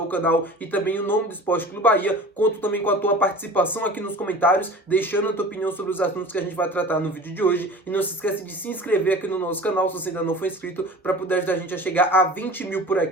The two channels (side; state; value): both; normal; correlation 0.40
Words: o canal e também o nome do Esporte Clube Bahia. Conto também com a tua participação aqui nos comentários, deixando a tua opinião sobre os assuntos que a gente vai tratar no vídeo de hoje. E não se esquece de se inscrever aqui no nosso canal, se você ainda não for inscrito, para poder ajudar a gente a chegar a 20 mil por